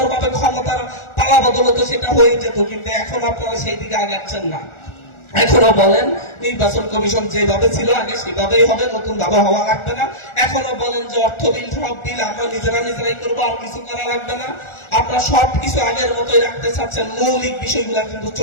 ক্ষমতার পালা বদল হতো, সেটা হয়ে যেত। কিন্তু এখন আপনারা সেই দিকে আগাচ্ছেন না। এখনো বলেন নির্বাচন কমিশন যেভাবে ছিল আগে সেভাবেই হবে, নতুন ভাবে হওয়া লাগবে না। এখনো বলেন যে অর্থ বিল, সব বিল আমরা নিজেরাই করবো, আর কিছু করা লাগবে না। আপনারা সবকিছু আগের মতোই রাখতে চাচ্ছেন। মৌলিক বিষয়গুলা কিন্তু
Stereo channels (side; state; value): right; late; 1.4 ms